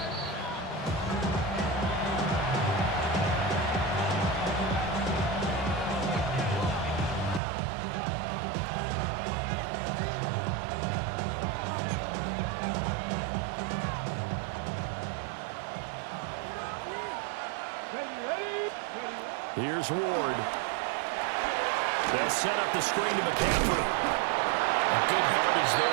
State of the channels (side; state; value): left; drops out; at 7.4 s